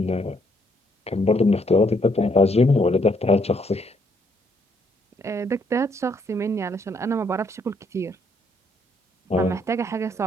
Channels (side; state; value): both; normal; correlation 0.71